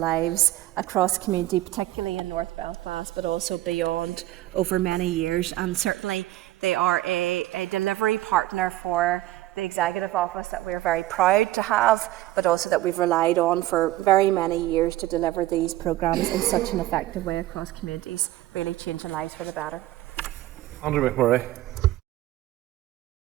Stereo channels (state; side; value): quieter; left; 15.6 dB